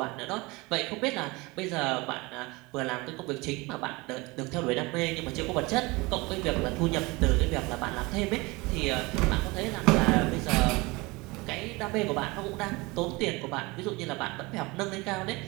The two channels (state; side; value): quieter; left; 24.1 dB